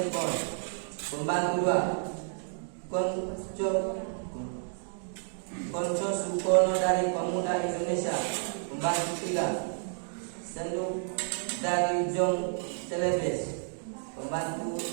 Bon. Pembantu 2 Konco Sukono dari Pemuda Indonesia. Pembantu 3 Senduk dari Jong Celebes. Pembantu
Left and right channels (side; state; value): left; silent; digital silence